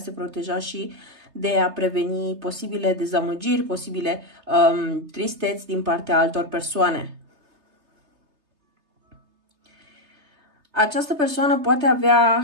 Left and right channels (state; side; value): late; left; 3.3 ms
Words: proteja și de a preveni posibile dezamăgiri, posibile tristeți din partea altor persoane. Această persoană poate avea